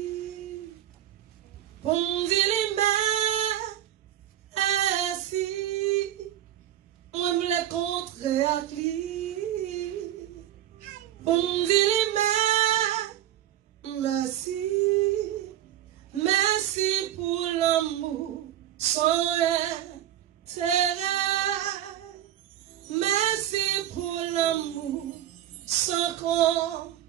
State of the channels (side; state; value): left; quieter; 12.1 dB